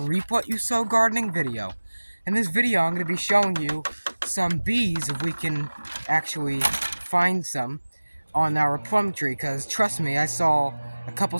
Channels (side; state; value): both; inverted; correlation -1.00